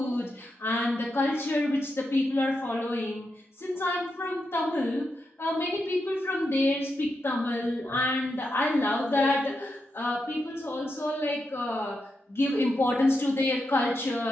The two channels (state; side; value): normal; both; correlation 0.85